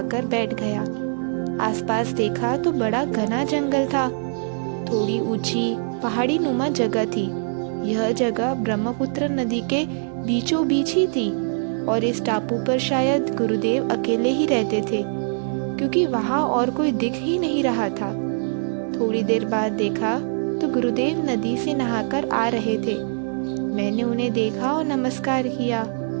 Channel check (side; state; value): left; silent; 60 dB below the other